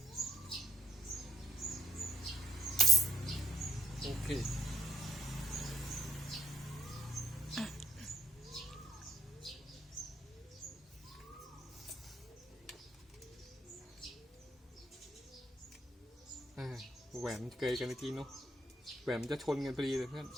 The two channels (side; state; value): both; normal; correlation 0.67